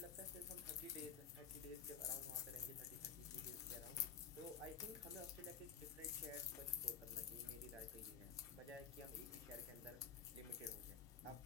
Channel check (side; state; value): right; quieter; 7.1 dB